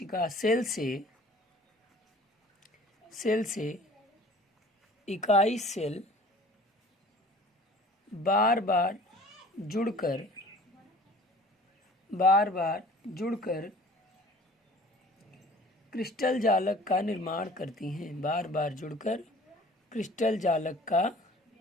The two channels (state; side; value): normal; both; correlation 0.48